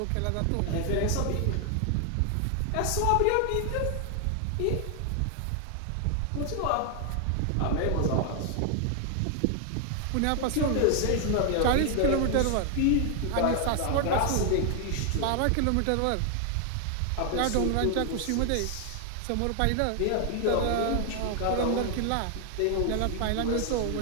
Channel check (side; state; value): both; different; correlation 0.00